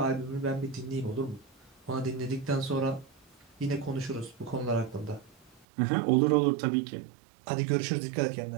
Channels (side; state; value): left; drops out; at 5.7 s